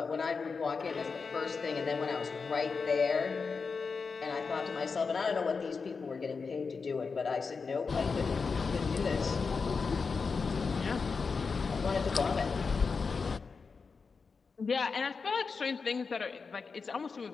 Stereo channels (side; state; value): right; quieter; 4.9 dB